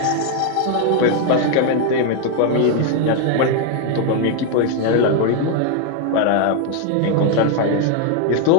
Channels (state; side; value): different; both; correlation 0.00